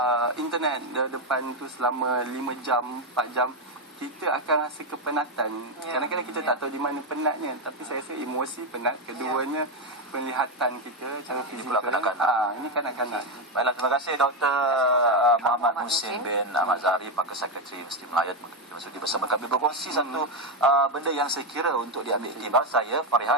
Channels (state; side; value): normal; both; correlation 0.06